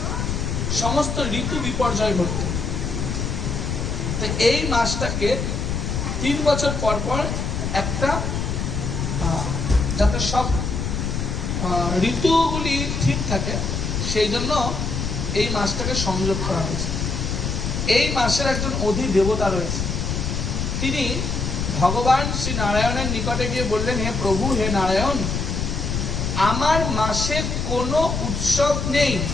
সমস্ত ঋতু বিপর্যয় ঘটতো। তো এই মাসটাকে 3 বছর পর পর একটা যাতে সব ঋতুগুলি ঠিক থাকে সেই জন্য এই মাসটাকে সংযোগ করা হয়েছে। এই মাসের একজন অধি দেবতা রয়েছে, তিনি ভগবান শ্রী নারায়ণের নিকটে গিয়ে বললেন, হে প্রভু, হে নারায়ণ, আমার মাসে কোনো উৎসব নেই,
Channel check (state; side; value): noise; left; rumble, 2 dB below the sound